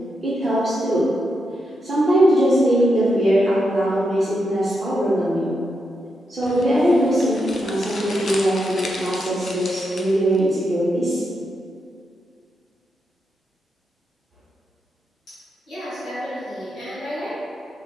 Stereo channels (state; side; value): normal; both; correlation 0.84